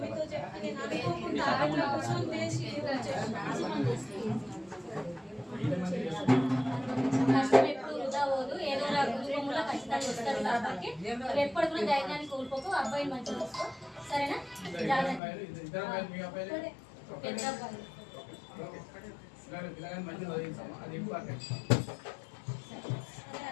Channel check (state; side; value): drops out; right; at 15.2 s